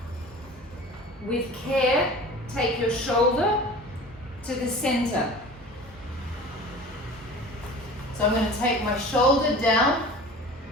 With care, take your shoulder to the center. So I'm going to take my shoulder down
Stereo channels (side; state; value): both; normal; correlation 0.40